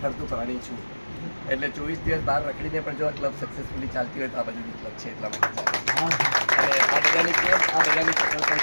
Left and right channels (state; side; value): inverted; both; correlation -1.00